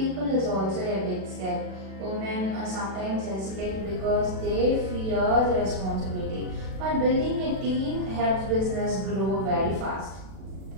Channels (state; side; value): late; left; 36 ms